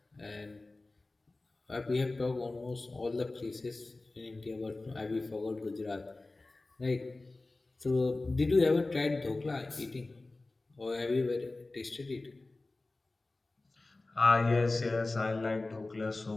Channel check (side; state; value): right; quieter; 3.2 dB